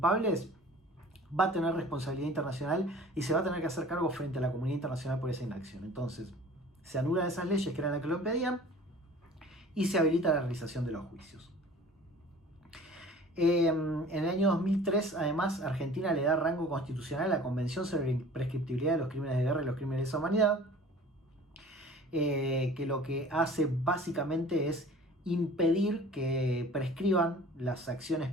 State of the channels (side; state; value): both; normal; correlation 0.46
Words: va a tener responsabilidad internacional y se va a tener que hacer cargo frente a la comunidad internacional por esa inacción. Entonces, se anulan esas leyes que eran las que lo impedían y se habilita la realización de los juicios. En el año 2003, además, Argentina le da rango constitucional a la Convención sobre la Imprescriptibilidad de los Crímenes de Guerra y los Crímenes de Lesa Humanidad, que lo que hace básicamente es impedir que prescriban las acciones